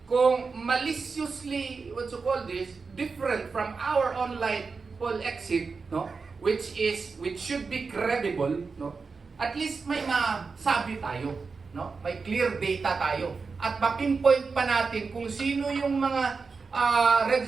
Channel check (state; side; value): quieter; left; 4.7 dB